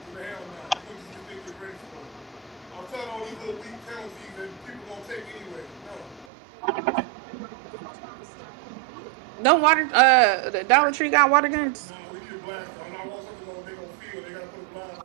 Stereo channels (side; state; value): left; drops out; at 6.2 s